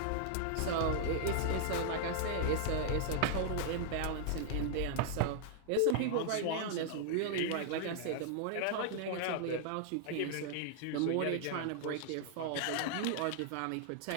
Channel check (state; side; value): different; both; correlation -0.01